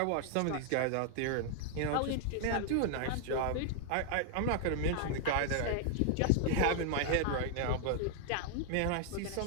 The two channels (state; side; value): different; both; correlation 0.00